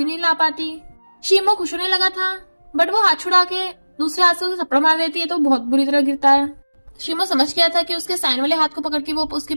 नहीं ला पाती। शीमो खुश होने लगा था बट वो हाथ छुड़ा के दूसरे हाथ से उसे थप्पड़ मार देती है तो बहुत बुरी तरह गिरता है। शीमो समझ गया था कि उसके साइन वाले हाथ को पकड़ के वो उसकी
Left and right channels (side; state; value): both; inverted; correlation -1.00